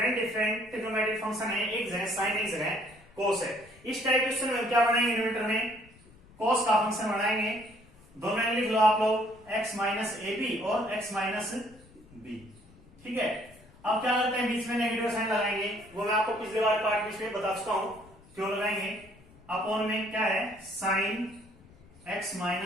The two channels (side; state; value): left; noise; rumble, 25 dB below the sound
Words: डिफरेंट ट्रिग्नोमेट्रिक फंक्शन है, एक जगह साइन एक जगह कोस है। इस टाइप क्वेश्चन में क्या बनाएंगे, न्यूमरेटर में कोस का फंक्शन बनाएंगे, दोनों में लिख लो आप लोग x माइनस ए बी और x माइनस बी, ठीक है। अब क्या करते हैं बीच में नेगेटिव साइन लगाएंगे, वो मैं आपको पिछले बार पार्ट बीच में बता चुका हूं क्यों लगाएंगे। अपॉन में क्या है sine x